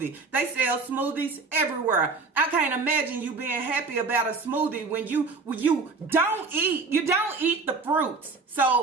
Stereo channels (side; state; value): left; quieter; 4.2 dB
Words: They sell smoothies everywhere. I can't imagine you being happy about a smoothie when you don't eat the fruits.